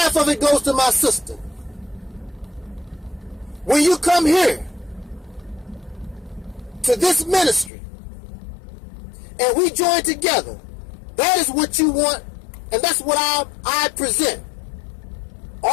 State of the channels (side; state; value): right; drops out; at 7.7 s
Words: of it goes to my sister. When you come here to this ministry and we join together, that is what you want, and that's what I present.